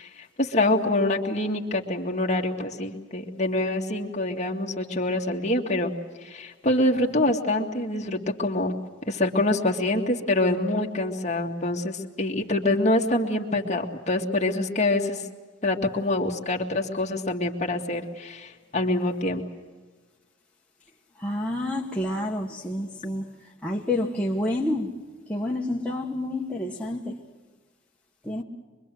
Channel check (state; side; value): normal; both; correlation 0.27